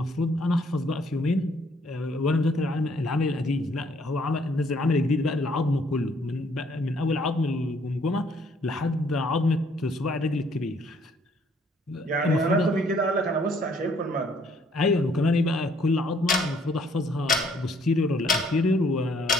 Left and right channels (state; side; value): normal; both; correlation 0.64